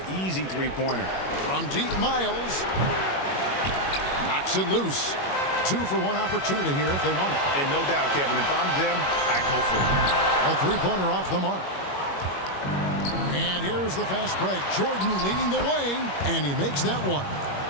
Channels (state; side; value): late; right; 21 ms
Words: Easy three-pointer. From deep, Miles. Knocks it loose. 2 for 1 opportunity here if they want it. And no doubt, Kevin, if I'm them, I go for it. A three-pointer off the mark. And here's the fast break. Jordan leading the way, and he makes that one.